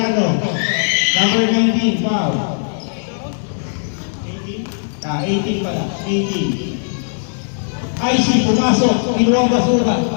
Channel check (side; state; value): right; silent; digital silence